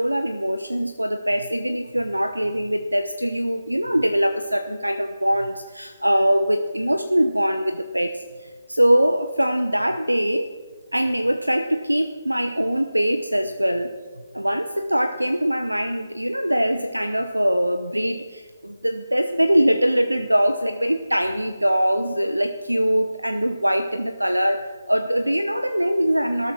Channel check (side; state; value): both; inverted; correlation -0.97